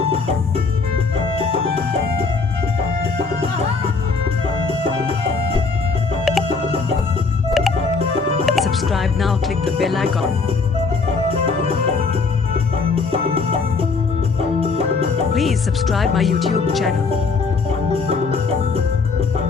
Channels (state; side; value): quieter; right; 4.5 dB